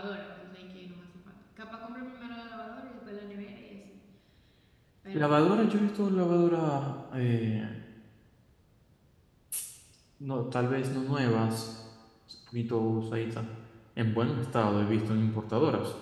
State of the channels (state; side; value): identical; both; correlation 1.00